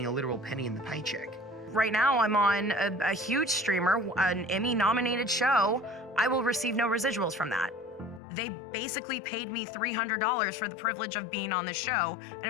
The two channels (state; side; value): drops out; right; at 8.2 s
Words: a literal penny in the paycheck. Right now I'm on a huge streamer, an Emmy-nominated show. I will receive no residuals from that. They basically paid me $300 for the privilege of being on the show, and